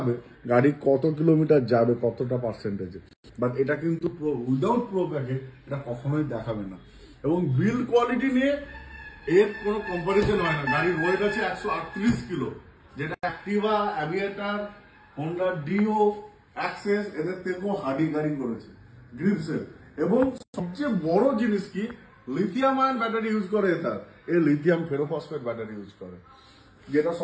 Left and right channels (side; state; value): both; identical; correlation 1.00